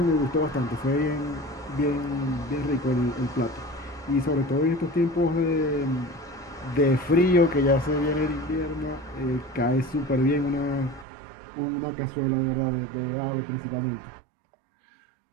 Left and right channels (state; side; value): drops out; left; at 11.1 s